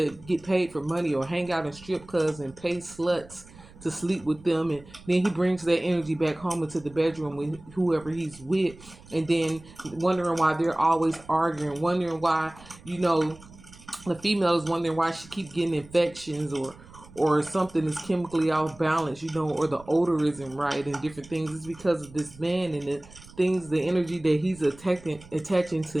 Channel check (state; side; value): noise; right; rumble, 21 dB below the sound